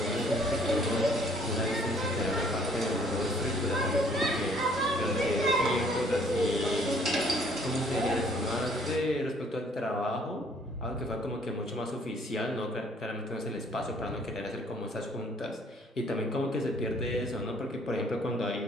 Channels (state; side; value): normal; both; correlation 0.60